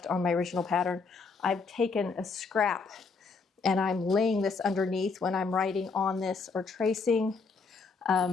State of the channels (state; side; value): quieter; right; 4.6 dB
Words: on my original pattern? I've taken a scrap and I'm laying this underneath when I'm writing on this or tracing,